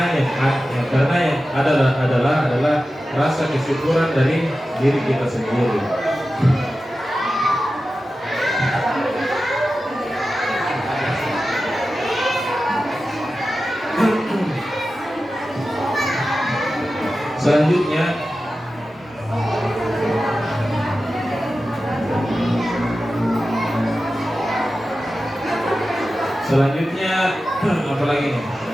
yang adalah rasa kesyukuran dari diri kita sendiri. Selanjutnya apa lagi nih?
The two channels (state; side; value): normal; both; correlation 0.93